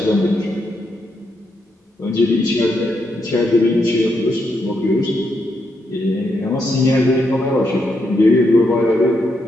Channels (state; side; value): normal; both; correlation 0.80